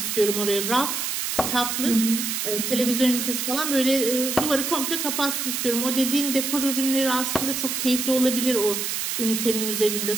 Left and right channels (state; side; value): noise; right; hiss, 2 dB below the sound